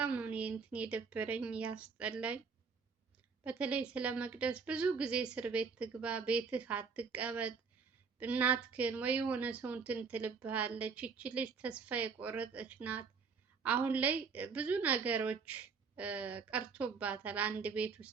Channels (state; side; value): quieter; left; 5.3 dB